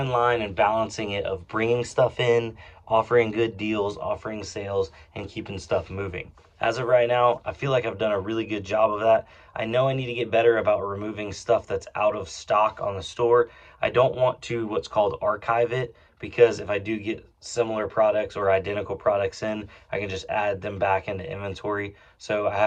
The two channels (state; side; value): identical; both; correlation 1.00